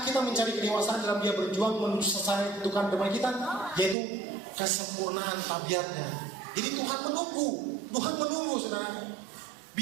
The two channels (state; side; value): drops out; left; at 4.0 s